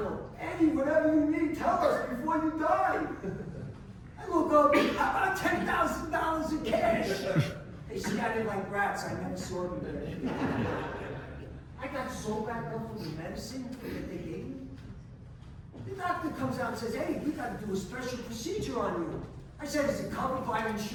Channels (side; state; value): both; identical; correlation 1.00